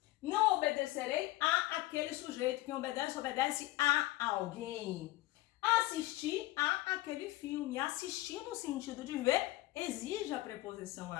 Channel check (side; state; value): right; quieter; 18.0 dB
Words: Não obedecerei a aquele sujeito. Quem obedece, obedece a alguém. Assistir a aquele filme. Assistir no sentido de ver exige a preposição